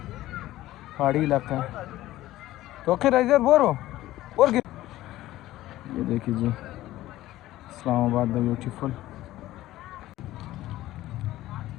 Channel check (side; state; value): right; quieter; 15.6 dB